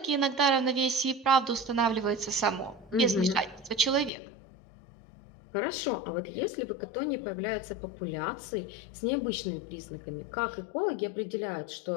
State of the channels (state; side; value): drops out; right; at 4.1 s